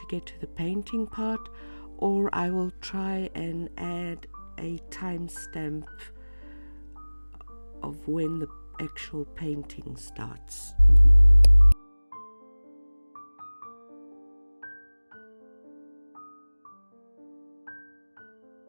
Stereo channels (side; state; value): both; inverted; correlation -1.00